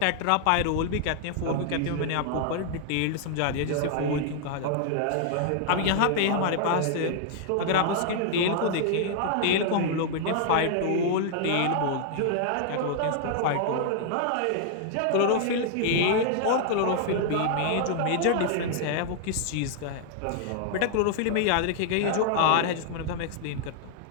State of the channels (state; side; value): different; both; correlation 0.00